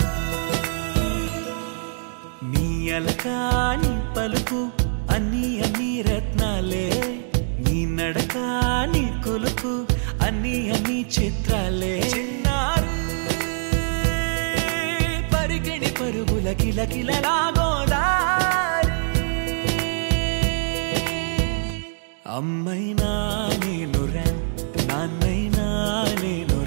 అలకాని పలుకు అన్ని అన్ని రత్నాలే నీ నడకాని కొలుకు అన్ని అన్ని చిత్రాలే పరికిణి పరుగుల కిలకిలలాగోదారి అమ్మైనా నేనురా నాన్నైనా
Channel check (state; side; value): silent; left; digital silence